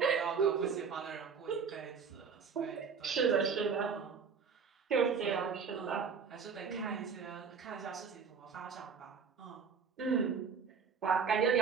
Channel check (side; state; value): left; quieter; 6.0 dB